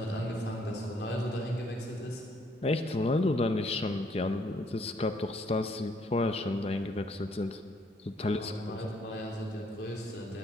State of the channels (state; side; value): normal; both; correlation 0.67